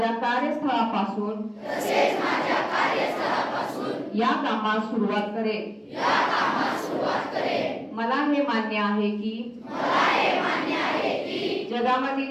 कार्यस्थळापासून या कामास सुरुवात करेन. मला हे मान्य आहे की जगामधील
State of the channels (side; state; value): both; identical; correlation 1.00